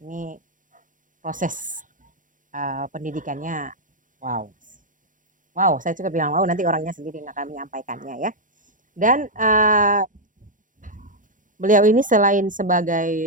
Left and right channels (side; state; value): left; late; 0.38 ms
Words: Ini proses pendidikannya, wow, saya juga bilang wow, nanti orangnya sendiri yang akan menyampaikannya ya. Dan beliau ini selain